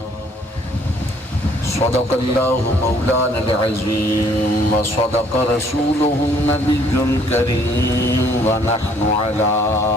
صدق الله مولانا العظيم وصدق رسوله النبي الكريم ونحن على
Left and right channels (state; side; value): normal; both; correlation 0.61